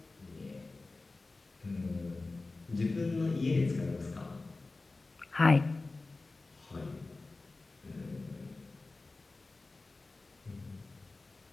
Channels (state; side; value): quieter; right; 3.4 dB